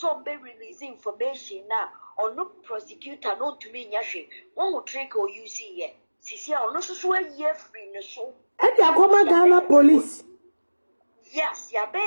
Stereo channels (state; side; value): inverted; both; correlation -1.00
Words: be releasing information now, or no prosecutor, no to me, Yashi, one will trick or you see ye. Sisia, or no so year free no show. And the Ghana police. Yes, ya be